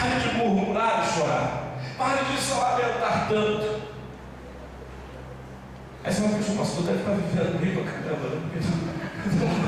de murmurar e chorar. Pare de só lamentar tanto. Aí você vai pensar: o pastor deve estar vivendo bem pra caramba, né?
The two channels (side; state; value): both; identical; correlation 1.00